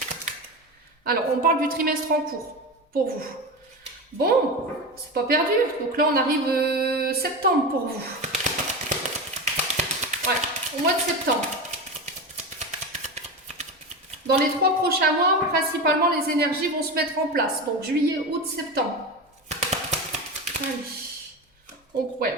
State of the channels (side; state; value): both; normal; correlation 0.22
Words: Alors, on parle du trimestre en cours pour vous. Bon, c'est pas perdu. Donc là, on arrive septembre pour vous. Ouais, au mois de septembre. Dans les 3 prochains mois, principalement, les énergies vont se mettre en place. Donc, juillet, août, septembre. Allez. Donc,